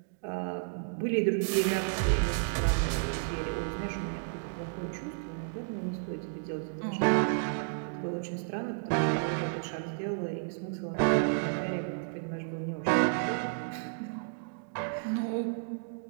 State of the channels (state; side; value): silent; left; digital silence